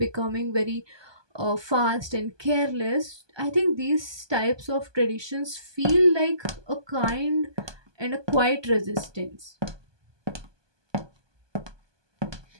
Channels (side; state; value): left; late; 1.2 ms